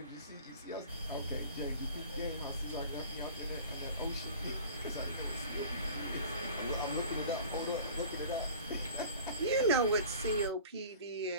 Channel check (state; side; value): inverted; both; correlation -0.42